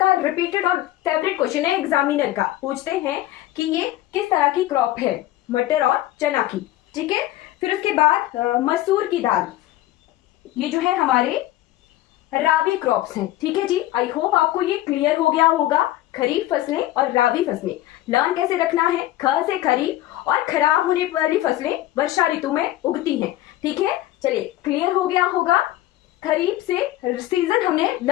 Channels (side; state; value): right; quieter; 15.1 dB